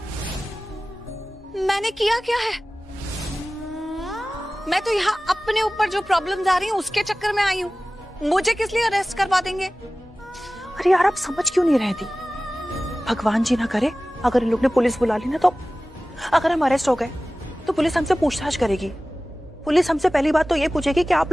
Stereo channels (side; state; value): both; normal; correlation 0.97